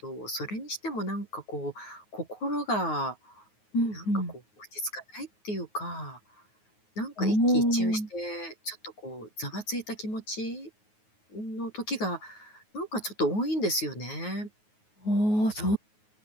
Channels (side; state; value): right; late; 9.4 ms